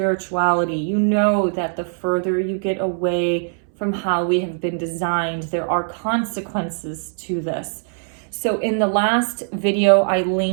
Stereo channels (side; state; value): left; silent; 64 dB below the other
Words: you know that the further you get away from how we have been designed, there are consequences to this. So in the last video, I